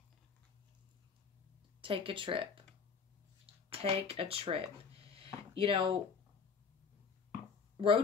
Take a trip. Take a trip. You know,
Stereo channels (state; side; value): quieter; right; 5.6 dB